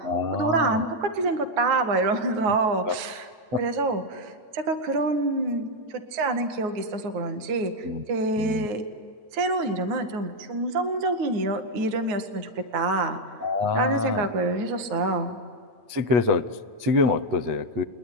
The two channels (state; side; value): late; left; 9.5 ms